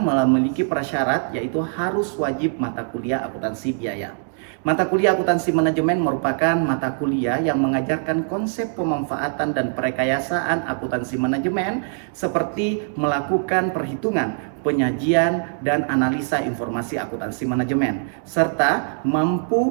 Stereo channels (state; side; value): silent; left; digital silence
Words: prasyarat yaitu harus wajib mata kuliah akuntansi biaya. Mata kuliah akuntansi manajemen merupakan mata kuliah yang mengajarkan konsep pemanfaatan dan perekayasaan akuntansi manajemen seperti melakukan perhitungan, penyajian, dan analisa informasi akuntansi manajemen, serta